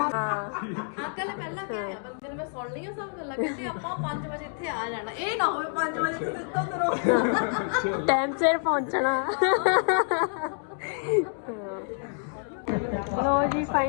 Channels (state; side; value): silent; right; 60 dB below the other